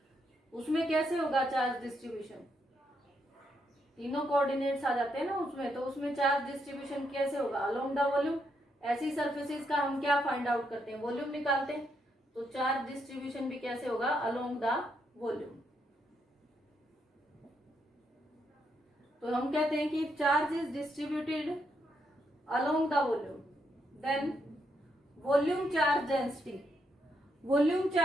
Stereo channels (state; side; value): normal; both; correlation 0.78